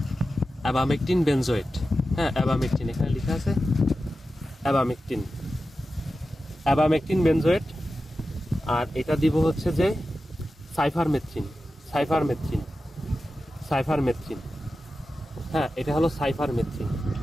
অ্যাবামেকটিন বেনজোয়েট, হ্যাঁ অ্যাবামেকটিন, এখানে লেখা আছে অ্যাবামেকটিন। Abamectin benzoate. আর এটা দিব হচ্ছে যে সাইফারমেথ্রিন। সাইফারমেথ্রিন সাইফারমেথ্রিন হ্যাঁ, এটা হলো সাইফারমেথ্রিন।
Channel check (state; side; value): normal; both; correlation 0.92